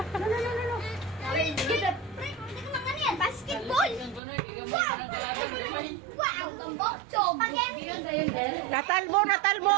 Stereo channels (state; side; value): drops out; left; at 4.2 s